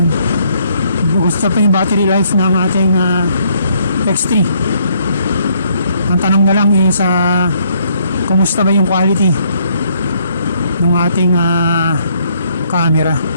Gusto pa yung battery life ng ating X3. Ang tanong na lang is kumusta ba yung quality ng ating camera.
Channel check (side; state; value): both; inverted; correlation -0.69